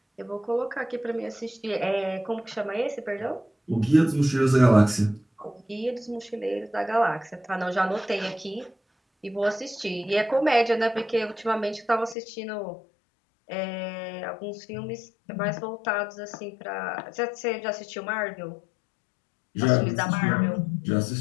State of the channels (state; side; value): drops out; right; at 12.2 s